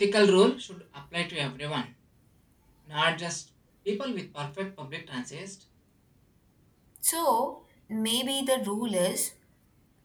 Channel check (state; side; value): identical; both; correlation 1.00